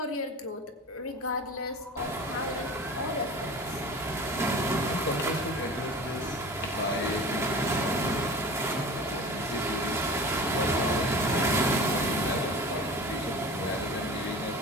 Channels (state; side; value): normal; both; correlation 0.36